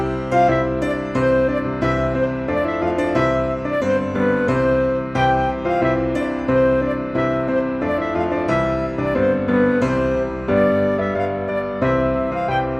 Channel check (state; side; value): noise; right; hum, 23 dB below the sound